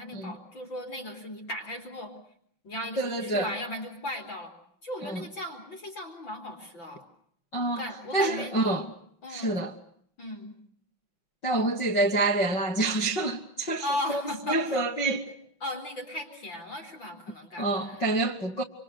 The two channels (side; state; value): right; late; 5.5 ms